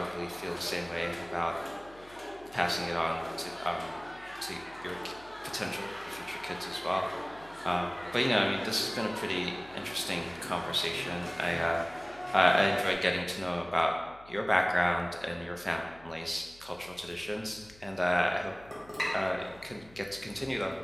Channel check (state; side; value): noise; left; hum, 24 dB below the sound